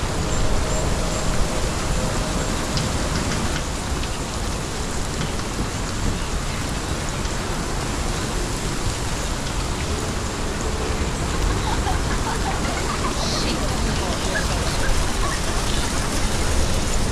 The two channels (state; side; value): identical; both; correlation 1.00